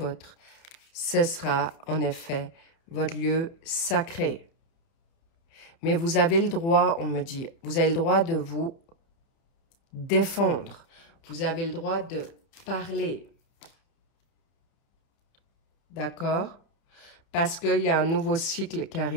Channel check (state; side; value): late; right; 30 ms